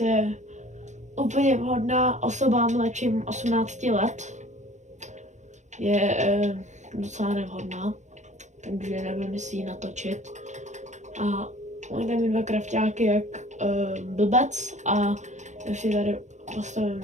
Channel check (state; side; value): late; left; 0.34 ms